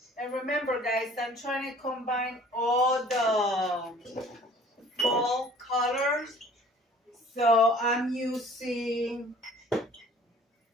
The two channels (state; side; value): normal; both; correlation 0.50